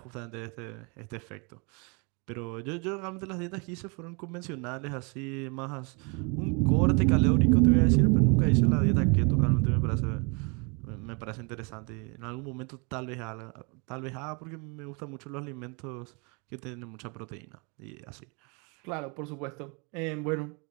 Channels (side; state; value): left; quieter; 32.5 dB